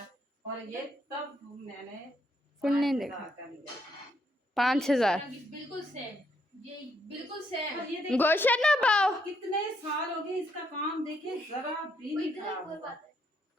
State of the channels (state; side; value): normal; both; correlation 0.74